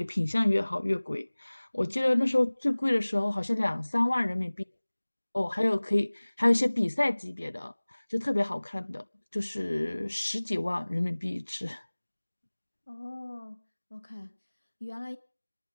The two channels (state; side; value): inverted; both; correlation -1.00